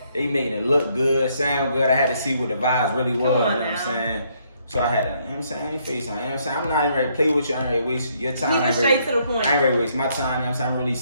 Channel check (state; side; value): inverted; both; correlation -0.71